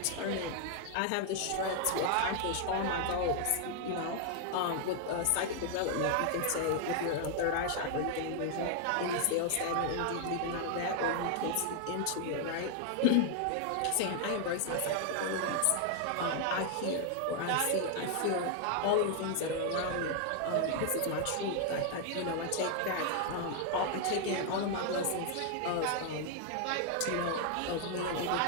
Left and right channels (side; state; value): both; different; correlation 0.00